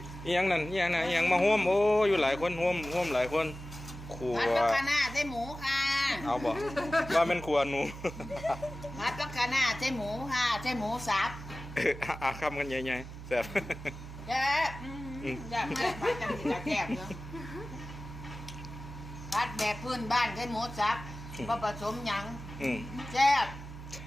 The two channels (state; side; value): noise; right; hum, 12 dB below the sound